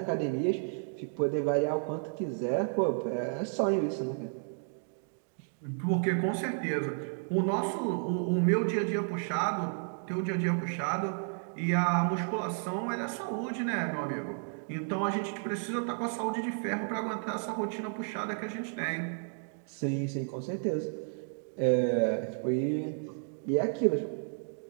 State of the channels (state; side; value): silent; left; 56 dB below the other